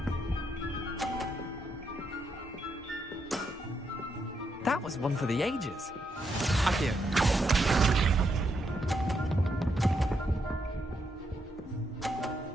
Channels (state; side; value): normal; both; correlation 0.79